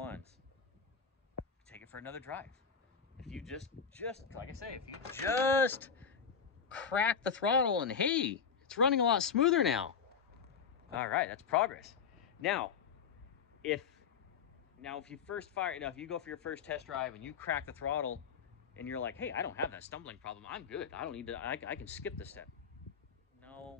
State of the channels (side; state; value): right; quieter; 6.6 dB